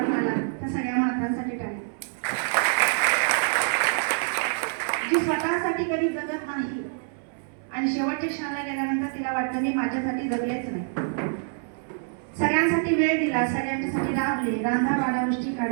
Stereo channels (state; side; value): silent; left; 61 dB below the other